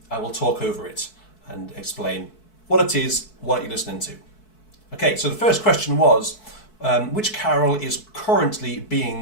will talk over it and explain what it is, what you're listening to. Okay. So the first question was, which carol is currently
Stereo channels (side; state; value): right; late; 4.6 ms